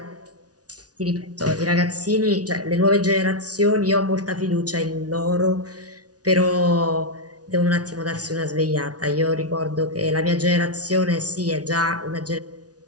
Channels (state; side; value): late; left; 0.68 ms